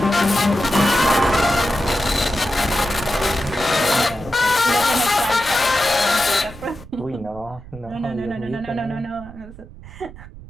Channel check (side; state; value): right; noise; rumble, 17 dB below the sound